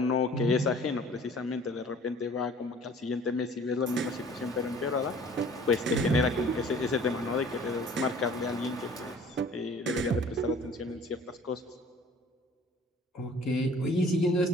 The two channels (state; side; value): normal; both; correlation 0.50